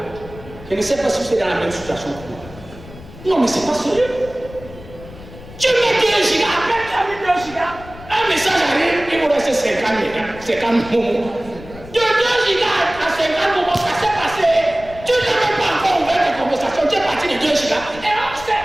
Je ne sais pas si c'est dans la même situation que moi. Non, mais c'est pas sérieux. Tu mets 2 gigas, après tu as mis 2 gigas, un message arrive, il vous reste 50 mégas, 50 moments. De 2 gigas à 50 moments, ça s'est passé. Tu n'as même pas encore ouvert tes conversations, tu es parti de 2 gigas. Et on sait,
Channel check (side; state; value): left; noise; rumble, 17 dB below the sound